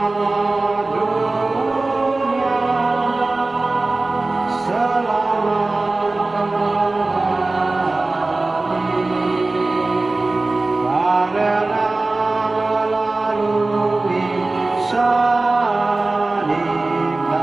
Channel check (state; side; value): quieter; left; 3.2 dB